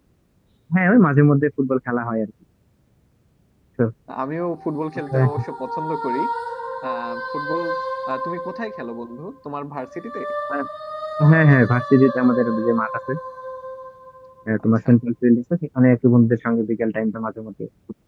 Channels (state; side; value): identical; both; correlation 1.00